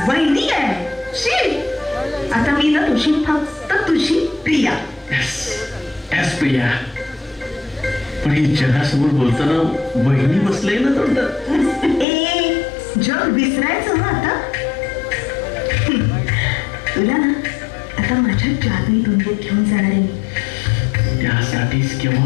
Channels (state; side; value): drops out; right; at 12.1 s